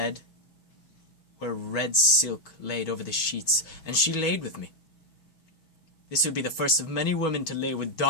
where red silk laid over the sheets, and she laid with me. This would be the first of many women to lay with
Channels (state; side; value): late; right; 6.3 ms